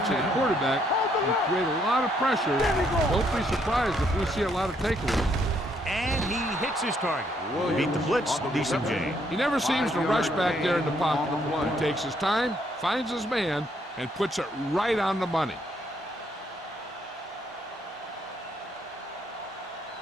the quarterback and create a lot of pressure. Don't be surprised if we see a lot of takeaways. And he hits his target. Beat the blitz, decent game. He never seems to rush back there in the pocket. He takes his time, finds his man, and puts it right on the money.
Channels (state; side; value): normal; both; correlation 0.71